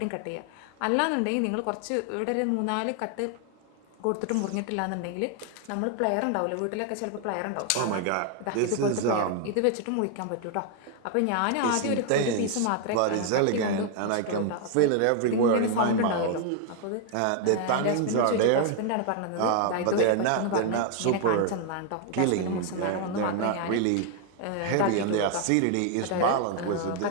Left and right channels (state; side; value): different; both; correlation 0.00